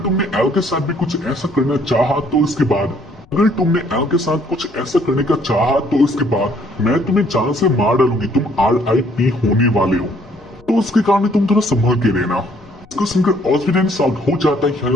तुमने एल के साथ भी कुछ ऐसा करना चाहा तो इसके बाद मैं तुम्हें जान से मार डालूंगी, तुम RIP होने वाले हो, तो उसके कारण तुम थोड़ा संभल के रहना। इसको सुनकर ऑस्पिडियन साउट हो जाता है, यानी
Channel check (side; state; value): left; noise; rumble, 27 dB below the sound